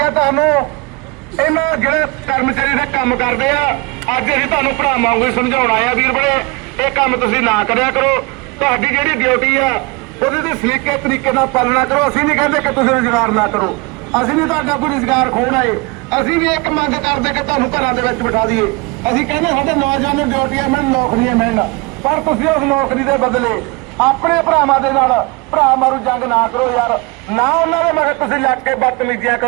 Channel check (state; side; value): quieter; left; 26.9 dB